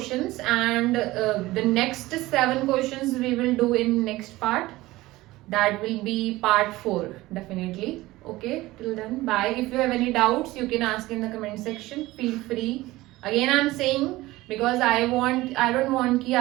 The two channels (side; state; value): left; quieter; 18.5 dB